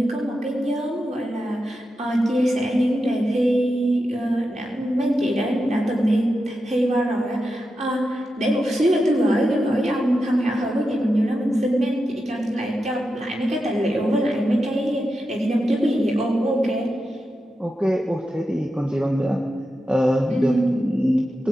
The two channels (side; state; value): both; normal; correlation 0.89